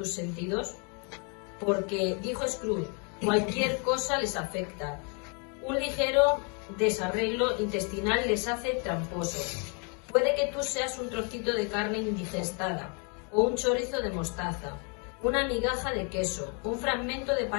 sentidos? Porque, dijo Scrooge, cualquier cosa les afecta. Un ligero desarreglo intestinal les hace tramposos. Puede que tú seas un trocito de carne indigestada, o un chorizo de mostaza, una migaja de queso, un fragmento de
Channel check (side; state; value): right; quieter; 36.8 dB